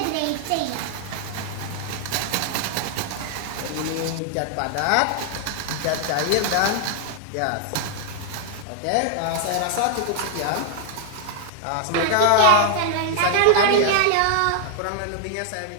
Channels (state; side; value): different; both; correlation 0.00